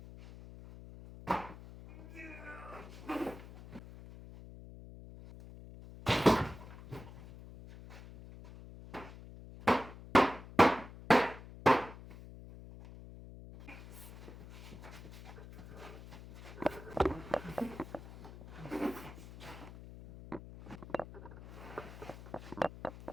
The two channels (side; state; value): left; noise; hum, 15 dB below the sound